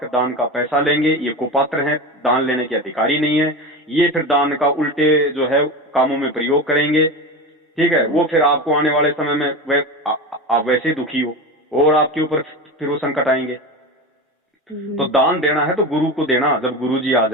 दान का पैसा लेंगे। ये कुपात्र हैं, दान लेने के अधिकारी नहीं है। ये फिर दान का उल्टे जो है कामों में प्रयोग करेंगे, ठीक है। वो फिर आपको आने वाले समय में आप वैसे दुखी हो और आपके ऊपर फिर वो संकट आएंगे। तो दान देना है तो गुरु को देना। जब गुरु जी आ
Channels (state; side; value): normal; both; correlation 0.24